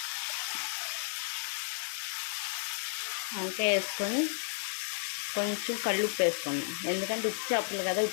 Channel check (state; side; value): silent; right; 56 dB below the other